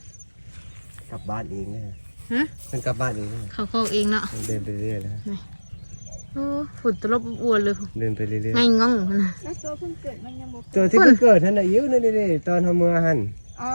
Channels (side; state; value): both; inverted; correlation -1.00